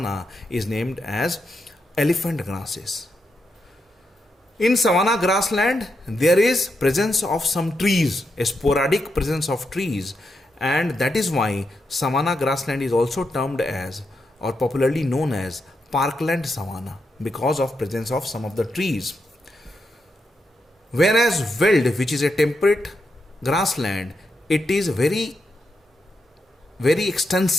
is named as elephant grasses. In savanna grassland, there is presence of some trees, a sporadic presence of trees, and that is why savanna grassland is also termed as, or popularly known as, parkland savanna, because of presence of some of the trees. Whereas veld, which is a temperate grassland, it is very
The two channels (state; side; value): normal; both; correlation 0.83